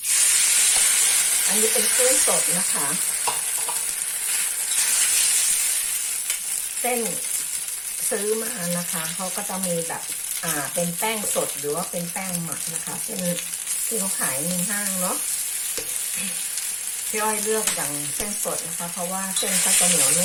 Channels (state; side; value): identical; both; correlation 1.00